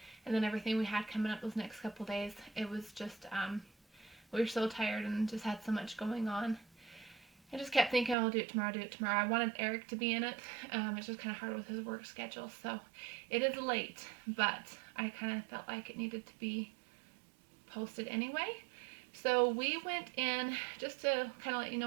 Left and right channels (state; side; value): drops out; left; at 8.2 s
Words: and then everything we had coming up those next couple days, it was just, we were so tired and just had so much going on. I just kept thinking, I'll do it tomorrow, I wanted Eric to be in it. It's just kind of hard with his work schedule, so it is late, but I kind of felt like it needed to be posted anyway. So we went in just to kind of let you